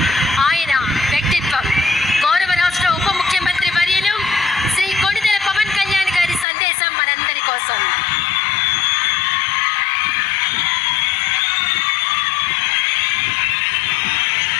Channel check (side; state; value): right; drops out; at 6.5 s